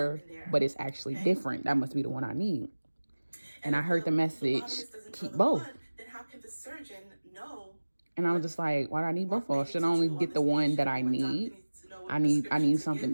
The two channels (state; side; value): inverted; both; correlation -1.00